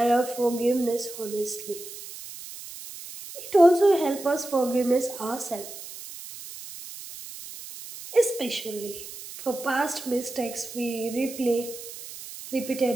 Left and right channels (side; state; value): right; noise; hiss, 13 dB below the sound